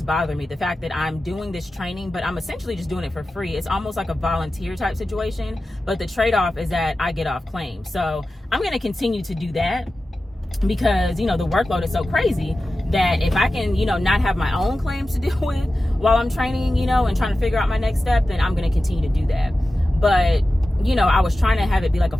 bothering me, the fact that I'm doing this training, but I'm essentially just doing it for free. It's almost like a volunteer type situation, but the trade-off is that I get off claim. So I'm going to continue to do that because, the workload is so crazy that if I can, not have my own claims to deal with while I'm training, and trying to figure out my next step, then I'm going to continue to do that. But, I was trying to have it be like a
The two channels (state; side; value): normal; both; correlation 0.94